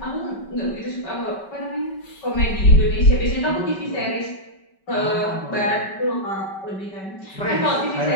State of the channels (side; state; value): right; late; 5.2 ms